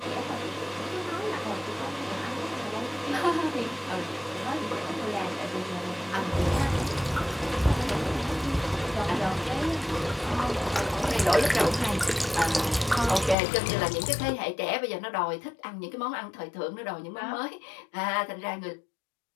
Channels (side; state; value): right; drops out; at 13.4 s